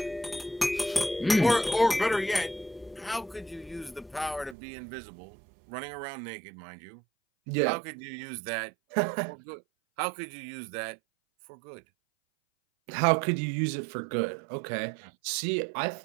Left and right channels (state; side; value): drops out; left; at 4.5 s